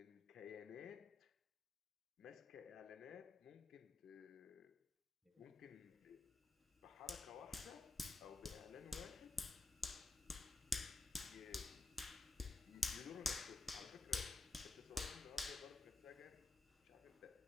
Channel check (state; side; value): quieter; right; 3.2 dB